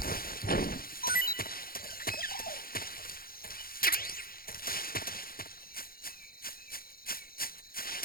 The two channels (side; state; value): right; late; 0.43 ms